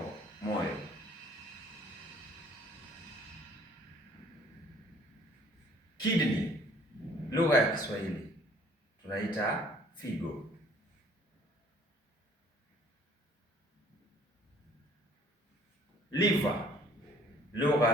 moyo. Kidney, lugha ya Kiswahili tunaita figo. Liver,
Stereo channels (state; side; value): normal; both; correlation 0.56